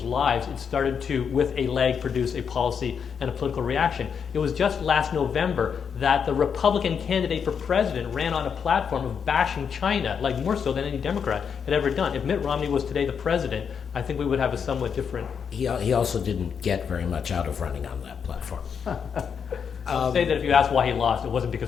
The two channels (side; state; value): right; quieter; 6.9 dB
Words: lives, it started to, with a lag, produce a policy and a political reaction. It was just last November that the Republican candidate for president ran on a platform of bashing China, like more so than any Democrat had ever done. If Mitt Romney was today the president, I think we would have a somewhat different... He also didn't get very much out of running on that platform. I'll say that if you ask why he lost, it wasn't